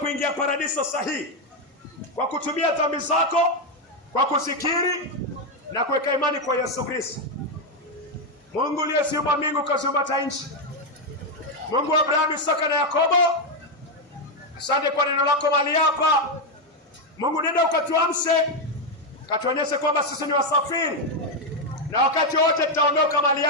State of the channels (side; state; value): both; normal; correlation 0.04